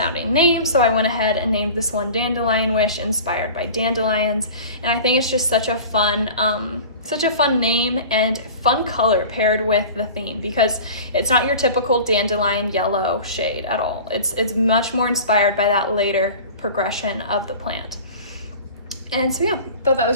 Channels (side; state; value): both; inverted; correlation -0.38